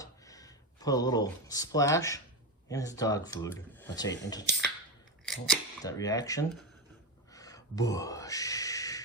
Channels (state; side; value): normal; both; correlation 0.14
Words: Put a little splash in his dog food. That's right, that reaction. Busch.